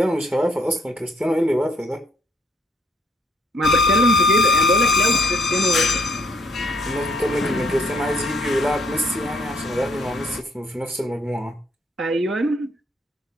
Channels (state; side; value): normal; both; correlation 0.67